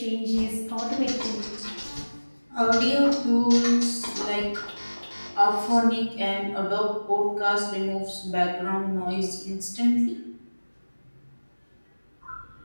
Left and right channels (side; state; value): both; inverted; correlation -1.00